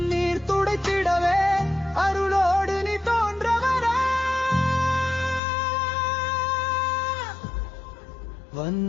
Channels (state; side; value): drops out; right; at 5.4 s